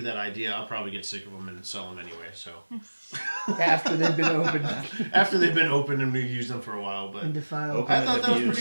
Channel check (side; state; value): both; inverted; correlation -1.00